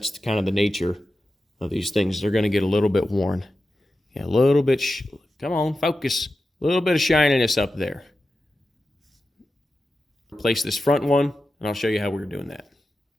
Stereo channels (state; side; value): normal; both; correlation 0.92